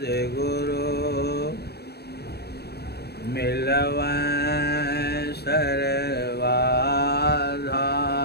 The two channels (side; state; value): right; late; 0.47 ms